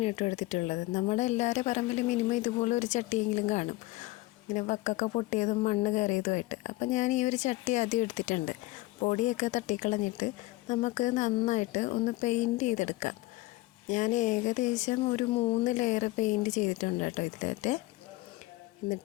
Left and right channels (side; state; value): right; quieter; 19.6 dB